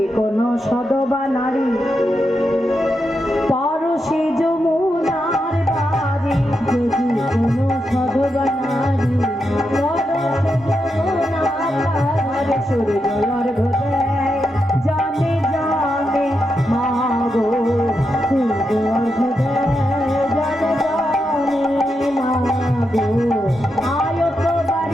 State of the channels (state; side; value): normal; both; correlation 0.85